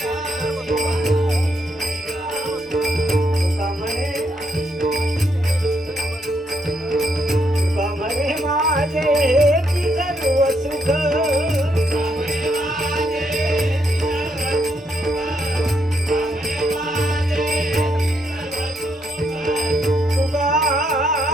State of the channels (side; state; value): both; normal; correlation 0.75